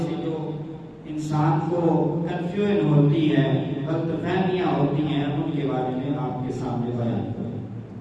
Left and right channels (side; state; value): both; identical; correlation 1.00